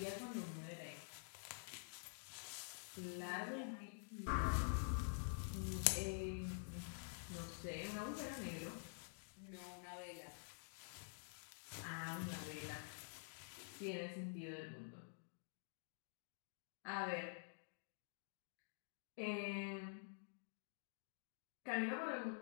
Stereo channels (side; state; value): right; silent; digital silence